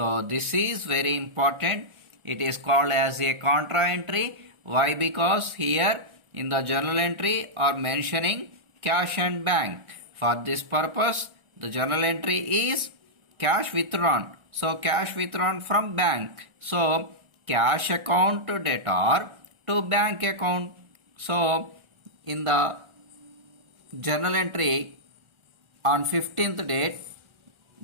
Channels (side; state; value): left; late; 1.4 ms